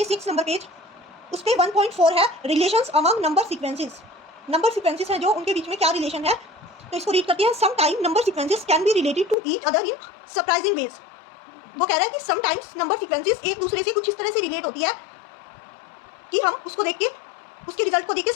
6 नंबर पेज उस पर 1.4 है, relations among number sequences. Number sequences हैं जो उनके बीच में क्या रिलेशन है, तो इसको रीड करते हैं। Some time number sequences can be related to each other in surprising ways. वो कह रहा है कि सम टाइम्स नंबर सीक्वेंसेस एक दूसरे से कुछ इस तरह से रिलेट होती है कि हम उसको देख के, उसके रिजल्ट को देख के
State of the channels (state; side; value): drops out; right; at 9.3 s